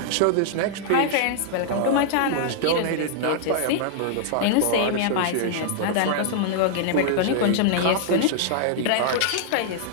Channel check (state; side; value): different; both; correlation -0.01